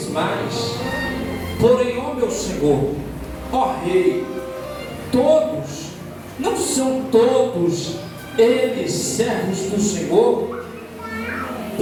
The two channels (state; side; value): identical; both; correlation 1.00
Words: mais. Porém, ó meu Senhor, ó Rei, todos, não são todos eles servos do Senhor?